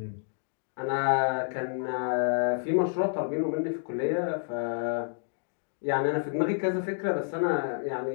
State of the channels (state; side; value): silent; right; digital silence